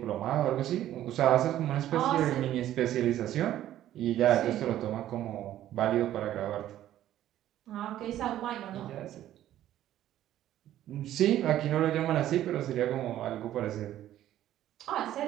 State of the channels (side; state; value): left; quieter; 12.6 dB